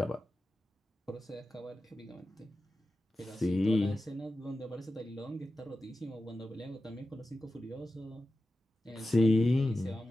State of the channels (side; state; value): both; normal; correlation 0.93